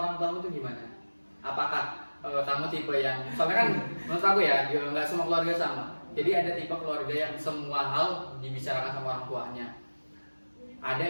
tua itu gimana? Apakah kamu tipe yang, soalnya kan menurut aku ya nggak semua keluarga sama. Jadi ada tipe keluarga yang semua hal dibicarakan sama orang tuanya.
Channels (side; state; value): both; inverted; correlation -1.00